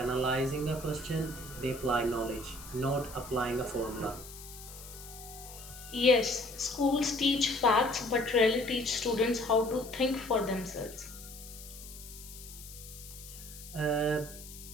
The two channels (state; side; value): noise; left; hiss, 15 dB below the sound